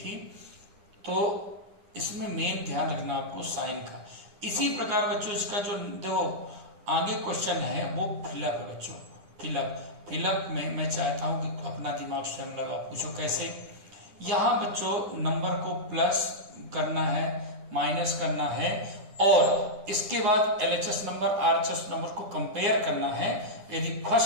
तो इसमें मेन ध्यान रखना आपको साइन का। इसी प्रकार बच्चों इसका जो देखो आगे क्वेश्चन है वो फिलअप है बच्चों, फिलअप में मैं चाहता हूं कि अपना दिमाग स्वयं लगाओ, पूछो कैसे। यहाँ बच्चों नंबर को प्लस करना है, माइनस करना है, और इसके बाद LHS नंबर RHS नंबर को कंपेयर करना है। यदि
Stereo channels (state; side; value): late; left; 9.9 ms